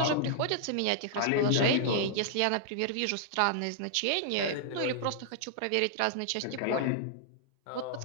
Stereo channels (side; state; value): both; different; correlation -0.01